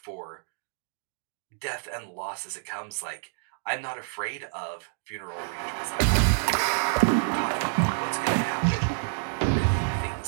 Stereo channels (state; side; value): silent; left; digital silence